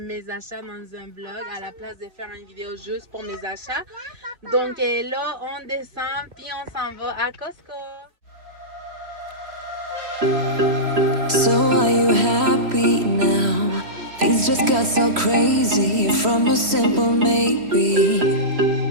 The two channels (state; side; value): late; left; 3.1 ms